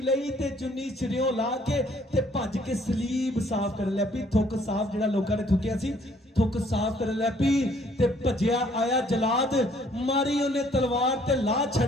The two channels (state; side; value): normal; both; correlation 0.62